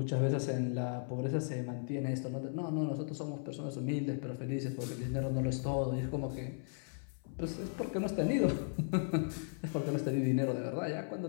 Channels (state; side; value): silent; right; 54 dB below the other